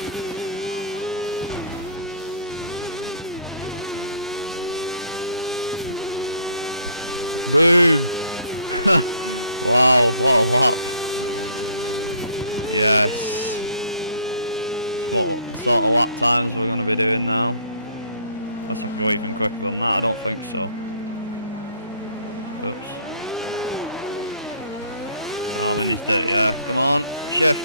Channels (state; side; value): inverted; both; correlation -0.58